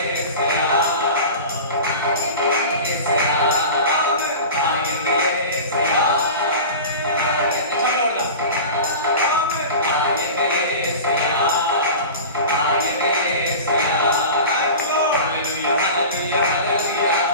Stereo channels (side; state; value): both; inverted; correlation -0.33